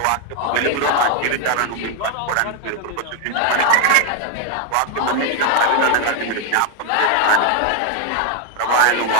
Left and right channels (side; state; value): both; different; correlation 0.01